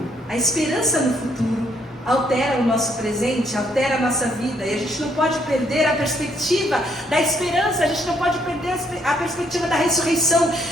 a esperança no futuro, altera o nosso presente, altera a nossa vida. E a gente não pode perder a perspectiva da esperança, a gente não pode perder a perspectiva da ressurreição,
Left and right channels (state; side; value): normal; both; correlation 0.70